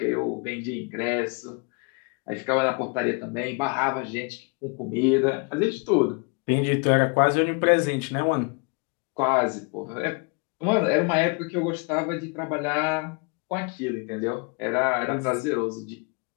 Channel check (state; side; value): quieter; right; 32.4 dB